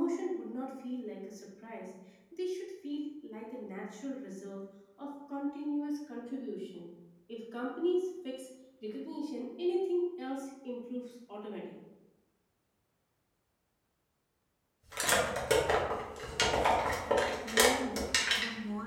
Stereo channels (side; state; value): both; identical; correlation 1.00